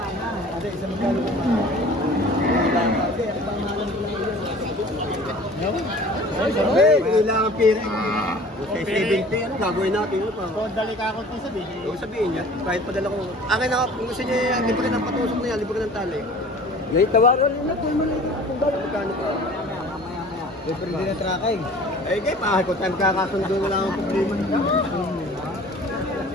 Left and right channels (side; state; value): both; normal; correlation 0.45